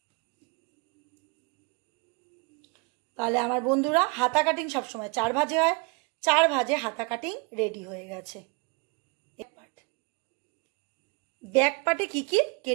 তাহলে আমার বন্ধুরা হাতা কাটিং সবসময় 4 ভাঁজে হয়, 4 ভাঁজে হাতা কাটিং রেডি হয়ে গেছে। ব্যাক পার্টে কি কি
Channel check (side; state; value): left; quieter; 31.2 dB